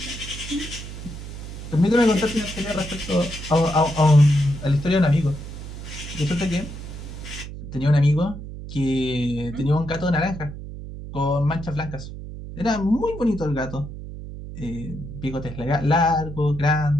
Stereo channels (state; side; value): noise; right; hum, 10 dB below the sound